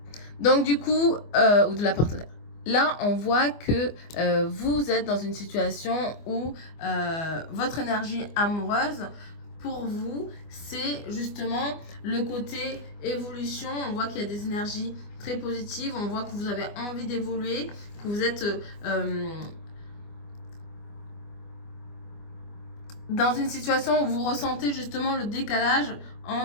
Donc, du coup, ou de la partenaire. Là, on voit que vous êtes dans une situation où votre énergie amoureuse, pour vous, c'est justement le côté évolution. On voit qu'il y a des énergies très positives. On voit que vous avez envie d'évoluer, que vous êtes dans une situation où vous ressentez justement le décalage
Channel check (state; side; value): late; right; 24 ms